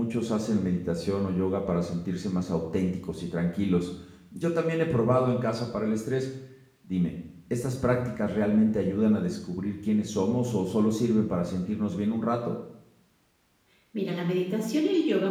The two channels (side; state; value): both; identical; correlation 1.00